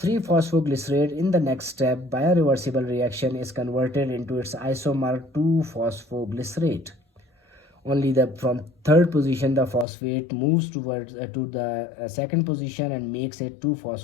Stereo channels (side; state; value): right; drops out; at 9.9 s